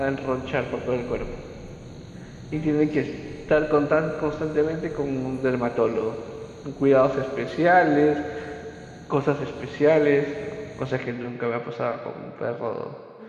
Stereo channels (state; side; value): identical; both; correlation 1.00